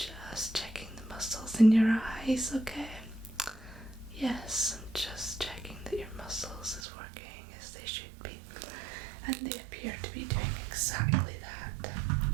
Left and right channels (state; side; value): drops out; left; at 6.9 s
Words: checking the muscles in your eyes, okay? Yes, I'm just checking that your muscles is working as they should be. And they appear to be doing exactly that.